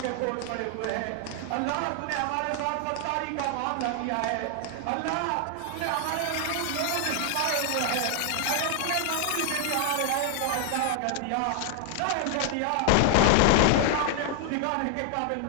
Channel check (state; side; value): different; both; correlation 0.00